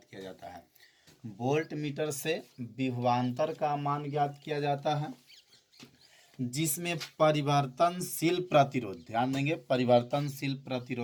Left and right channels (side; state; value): both; identical; correlation 1.00